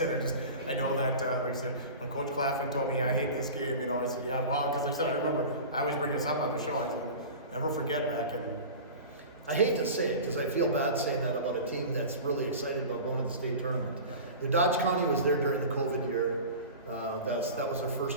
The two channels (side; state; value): both; inverted; correlation -0.34